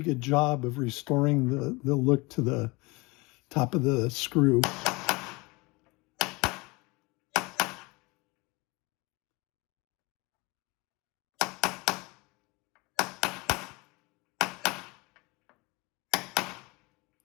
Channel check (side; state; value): right; quieter; 25.2 dB